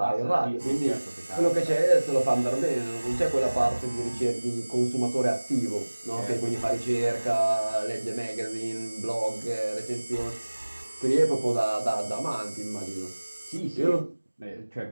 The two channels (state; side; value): inverted; both; correlation -1.00